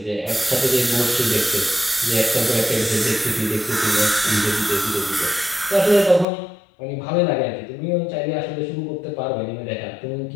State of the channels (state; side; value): drops out; right; at 6.2 s